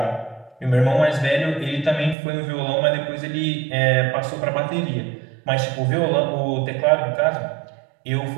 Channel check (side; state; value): left; drops out; at 2.1 s